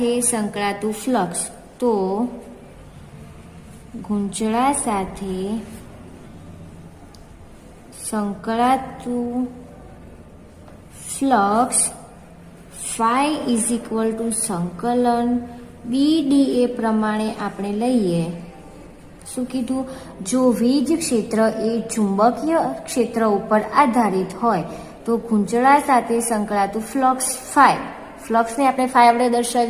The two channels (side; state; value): both; identical; correlation 1.00